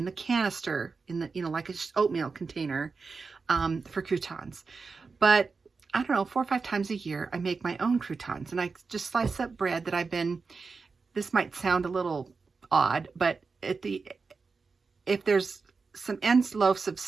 the canister, in the, like a oatmeal container for croutons. But I don't know, 4 or 5 times a year, I make my own croutons, and I just slice up bread that this might sound a little odd, but if there's some ends loaves of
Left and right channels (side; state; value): left; quieter; 4.6 dB